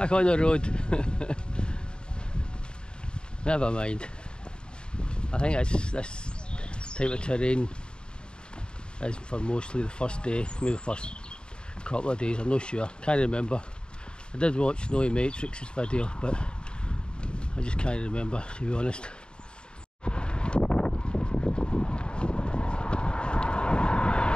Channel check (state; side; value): late; right; 0.050 ms